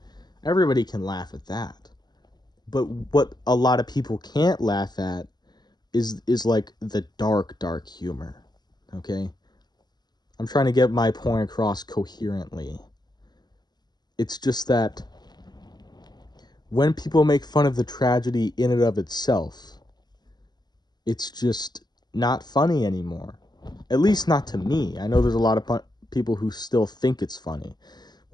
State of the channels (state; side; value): late; right; 0.20 ms